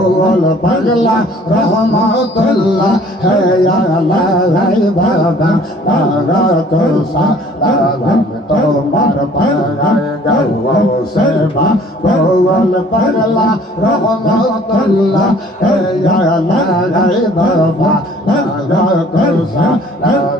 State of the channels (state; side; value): normal; both; correlation 0.54